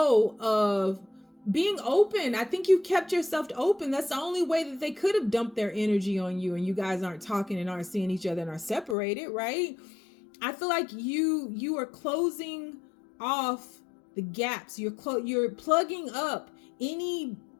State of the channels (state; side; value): drops out; right; at 9.0 s